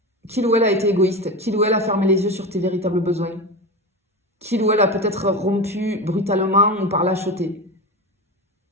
qu'il ou elle a été égoïste, qu'il ou elle a fermé les yeux sur tes véritables besoins, qu'il ou elle a peut-être rompu brutalement ou par lâcheté.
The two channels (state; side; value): normal; both; correlation 0.23